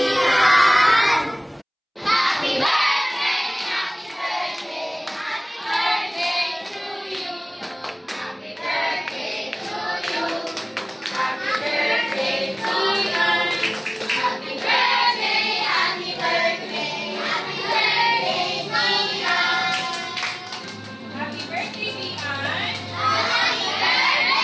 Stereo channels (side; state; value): both; identical; correlation 1.00